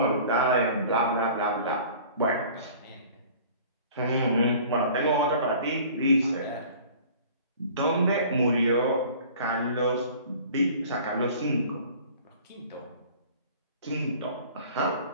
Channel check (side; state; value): both; inverted; correlation -0.47